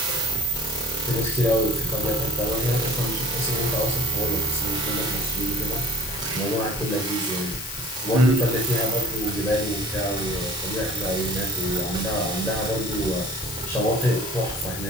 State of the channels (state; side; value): noise; left; hiss, 9 dB below the sound